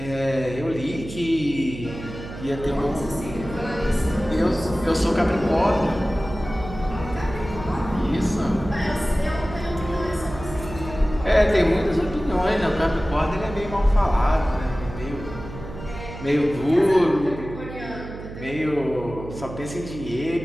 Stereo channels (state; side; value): noise; right; hum, 11 dB below the sound